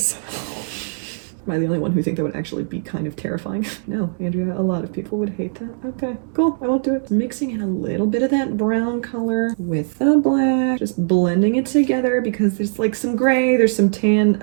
Am I the only one who think that would actually be kind of terrifying? No, Andrea, a lot of people would hate that. Okay, cool, I won't do it. Mixing in a little bit of that brown color with the black, just blending it together because there's like some gray, there's some tan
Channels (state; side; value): silent; left; digital silence